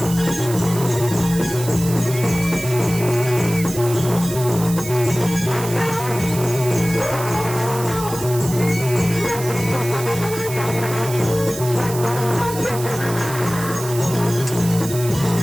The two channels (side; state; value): right; noise; hiss, 10 dB below the sound